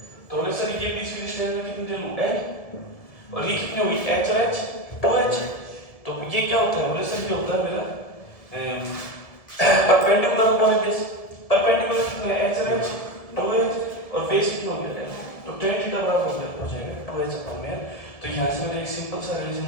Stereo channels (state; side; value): late; right; 1.7 ms